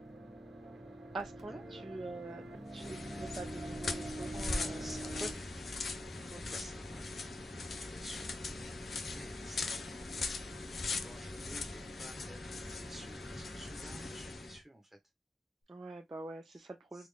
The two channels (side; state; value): both; normal; correlation 0.87